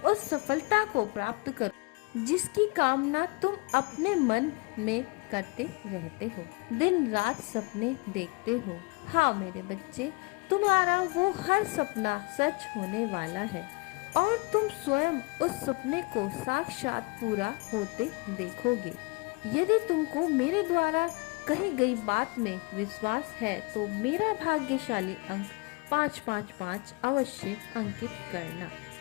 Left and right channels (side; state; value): right; quieter; 29.0 dB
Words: उस सफलता को प्राप्त करो जिसकी कामना तुम अपने मन में करते रहते हो, दिन रात सपने देखते हो। हाँ मेरे बच्चे, तुम्हारा वो हर सपना सच होने वाला है और तुम स्वयं उस सपने को साक्षात पूरा होते देखोगे। यदि तुमको मेरे द्वारा कही गई बात में विश्वास है तो मेरा भाग्यशाली अंक 555 अवश्य अंकित करना।